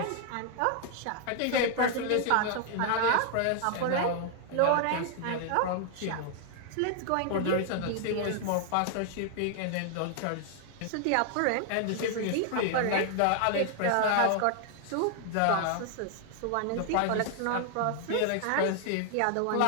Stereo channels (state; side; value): different; both; correlation 0.00